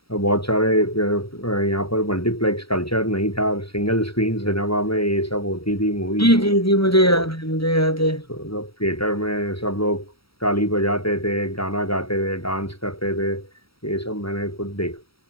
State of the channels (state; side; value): late; right; 0.75 ms